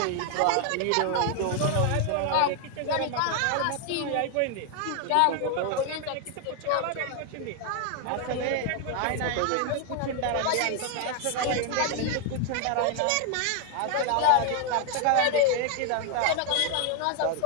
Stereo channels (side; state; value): both; different; correlation 0.00